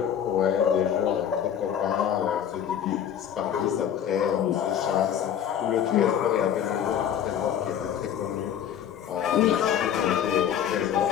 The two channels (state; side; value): quieter; right; 9.3 dB